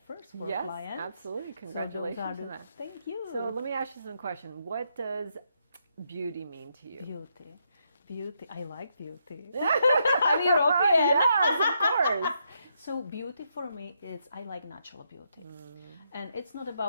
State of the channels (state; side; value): inverted; both; correlation -0.78